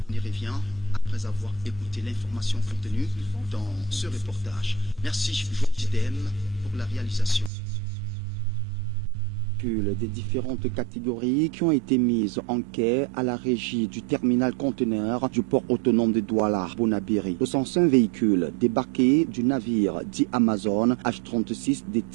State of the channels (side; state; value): left; drops out; at 7.5 s